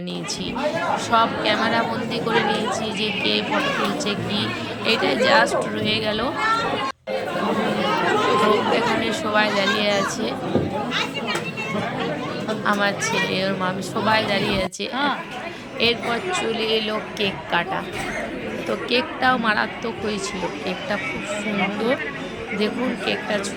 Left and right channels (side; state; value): both; identical; correlation 1.00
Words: নিয়েছি, সব ক্যামেরা বন্দি করে নিয়েছি যে কে ফটো তুলছে কি। এইটাই জাস্ট রয়ে গেল। তো এখানে সবাই দাঁড়িয়ে আছে, আমার ছেলে ওর মা সবাই দাঁড়িয়ে আছে। এরপর চলে এলো কেক কাটা। তো কেকটাও মারাত্মক হয়েছিল, কেকটা খুব সুন্দর। দেখুন কেকটা